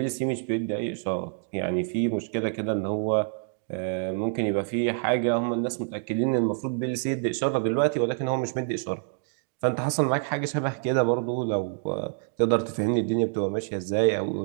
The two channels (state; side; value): silent; left; digital silence